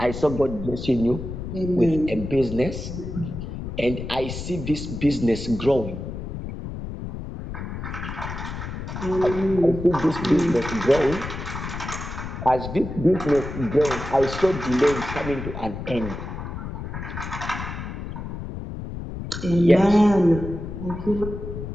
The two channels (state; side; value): noise; left; rumble, 7 dB below the sound